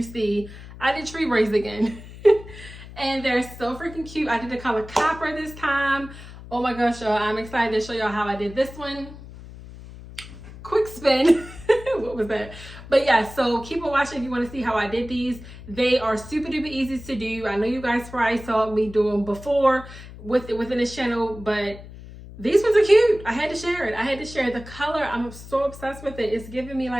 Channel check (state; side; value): noise; left; hum, 15 dB below the sound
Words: see, I did tree braids again. And they're so freaking cute. I did the color copper this time. Oh my gosh, y'all. I'm excited to show y'all how I did this one. Quick spin. What was that? But yeah, so keep on watching if you want to see how I did these. They are super duper easy to do. I know you guys probably saw me do them before within this channel, but these ones are cute. I had to share it. I had to share the color. I'm so obsessed with it. It's giving me